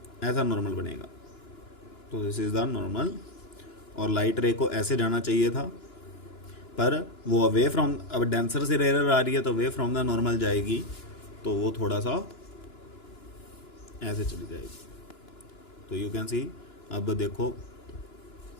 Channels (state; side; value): late; right; 2.9 ms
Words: ऐसा नॉर्मल बनेगा। तो दिस इज द नॉर्मल। और लाइट रे को ऐसे जाना चाहिए था, पर वो अवे फ्रॉम, अब डेंसर से रेयर आ रही है तो अवे फ्रॉम द नॉर्मल जाएगी, तो वो थोड़ा सा ऐसे चली जाएगी। तो यू कैन सी, अब देखो